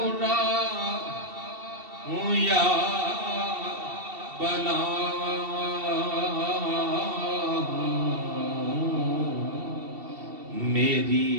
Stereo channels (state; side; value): late; left; 2.7 ms